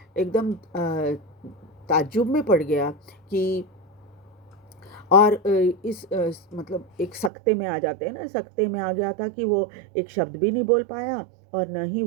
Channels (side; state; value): left; drops out; at 7.3 s